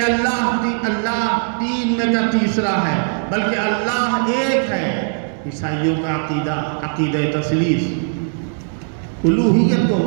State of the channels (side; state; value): left; silent; 65 dB below the other